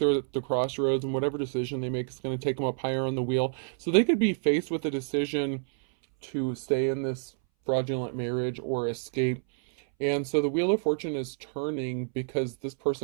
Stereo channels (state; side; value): silent; left; 59 dB below the other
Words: at the crossroads, and whatever decision they make is going to take them up higher on the wheel. So they could be faced with a decision to stay in this fraudulent marriage or escape. And so the Wheel of Fortune is turning because this